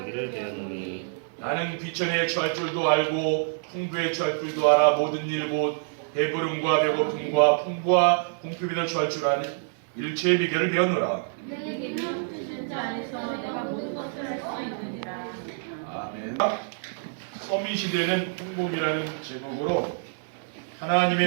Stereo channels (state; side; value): silent; left; digital silence